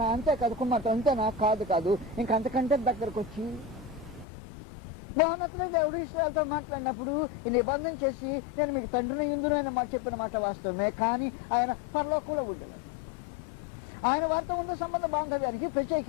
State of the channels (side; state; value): right; drops out; at 4.2 s